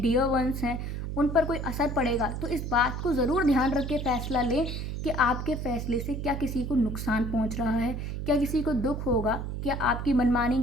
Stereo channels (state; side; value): noise; right; hum, 4 dB below the sound